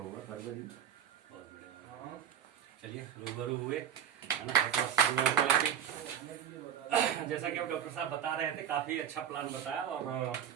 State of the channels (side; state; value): left; quieter; 9.0 dB